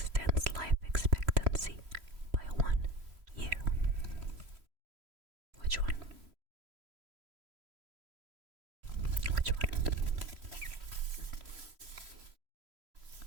life expectancy by 1 year? Which one? Which one?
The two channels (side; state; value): left; late; 3.0 ms